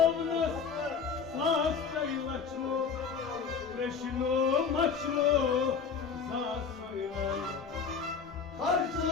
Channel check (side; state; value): right; quieter; 5.9 dB